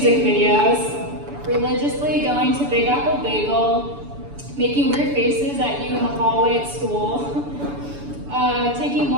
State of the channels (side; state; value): left; late; 7.0 ms